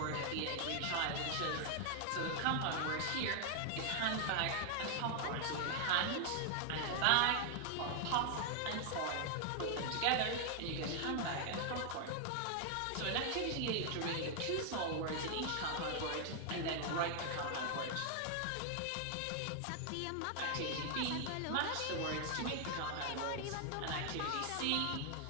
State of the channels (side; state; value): both; different; correlation 0.00